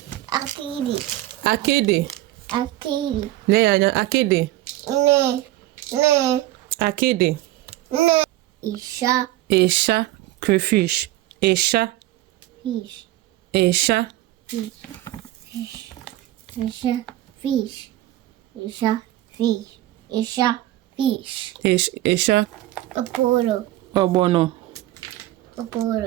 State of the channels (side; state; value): left; quieter; 15.6 dB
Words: Akịdị. Lee anya, akịdị. Akịdị. Isha. Crayfish. Isha. Ogbono.